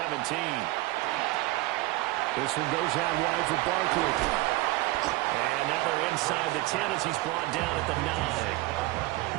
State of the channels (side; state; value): left; quieter; 19.4 dB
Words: This one goes out wide for Barkley. And now they're inside the 10 as he's brought down at the